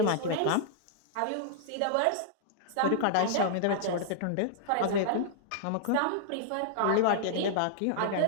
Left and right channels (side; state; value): both; different; correlation -0.01